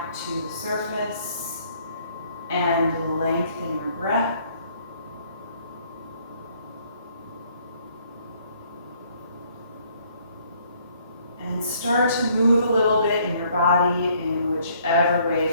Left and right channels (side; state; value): both; inverted; correlation -0.63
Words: to the surface and lengthen your breath. And start to move a little bit in your body in whichever way